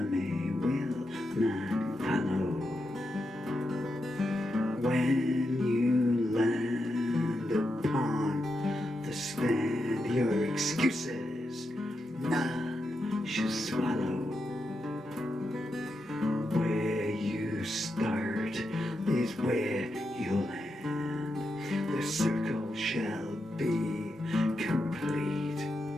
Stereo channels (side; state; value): both; normal; correlation 0.86